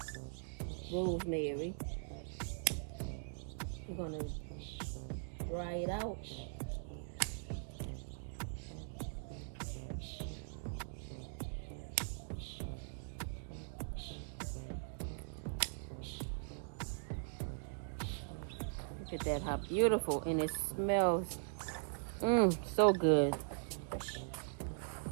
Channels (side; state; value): left; silent; digital silence